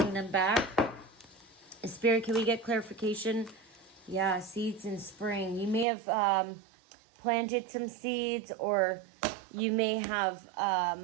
them back. Spirit, can we get clarification? Yeah, seeds in spring. You may have planted some seeds, or you may have,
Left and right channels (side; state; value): left; drops out; at 5.9 s